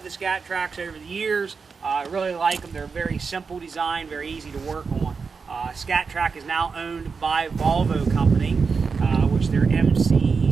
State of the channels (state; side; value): quieter; left; 5.2 dB